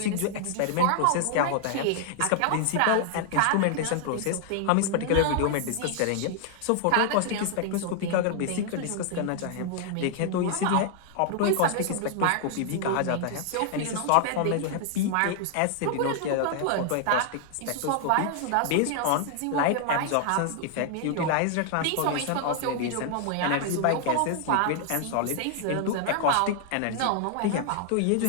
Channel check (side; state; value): both; different; correlation 0.00